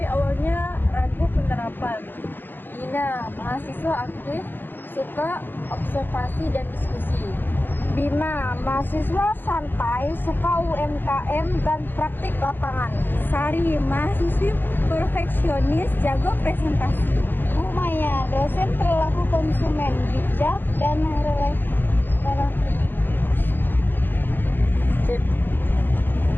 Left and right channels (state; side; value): late; right; 0.096 ms